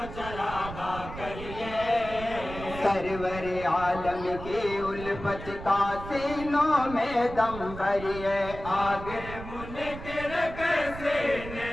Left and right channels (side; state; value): right; noise; rumble, 11 dB below the sound